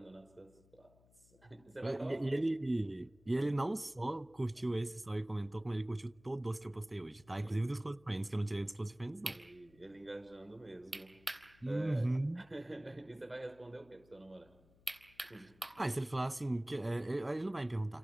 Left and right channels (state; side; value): noise; left; hum, 28 dB below the sound